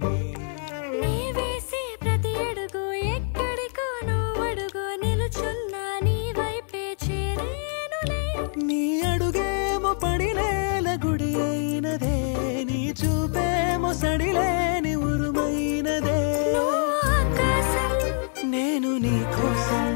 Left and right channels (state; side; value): silent; right; 59 dB below the other